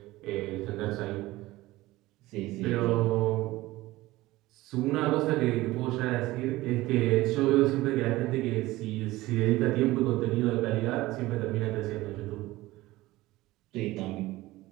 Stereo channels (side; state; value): left; quieter; 18.3 dB